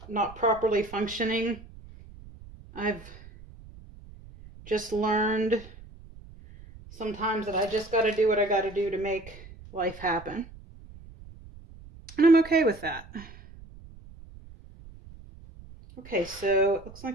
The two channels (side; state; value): right; noise; rumble, 19 dB below the sound